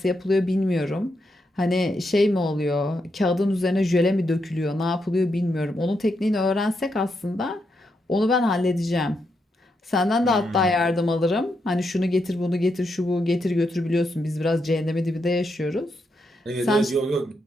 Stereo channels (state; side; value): normal; both; correlation 0.82